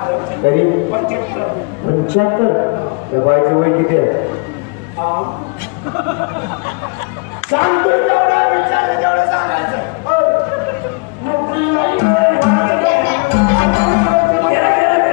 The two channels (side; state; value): right; quieter; 32.3 dB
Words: तरी 75 त्या बाईचं वय किती आहे सांगतोय तेवढा विचारलं तेवढं सांगायचं